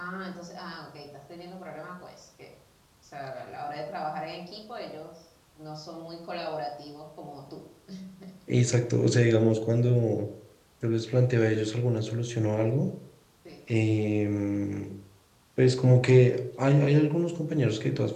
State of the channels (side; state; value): both; identical; correlation 1.00